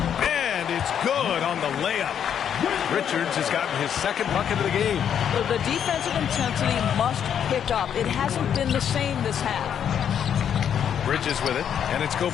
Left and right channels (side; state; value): right; quieter; 8.7 dB